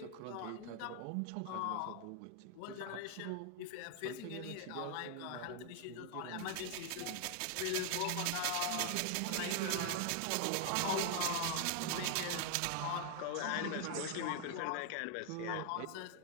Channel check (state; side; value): different; both; correlation 0.00